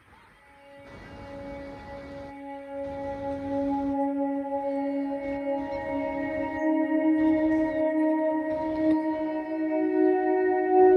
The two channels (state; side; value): identical; both; correlation 1.00